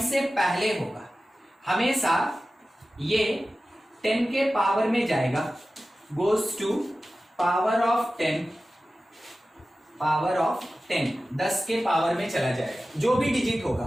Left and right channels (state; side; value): normal; both; correlation 0.95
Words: से पहले होगा हमेशा ये 10 के पावर में जाएगा, गोज टू पावर ऑफ 10, 10 के पावर में चला जाएगा, जो भी डिजिट होगा